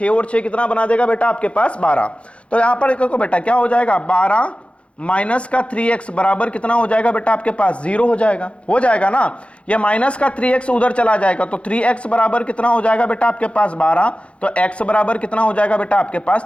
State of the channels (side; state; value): right; late; 0.061 ms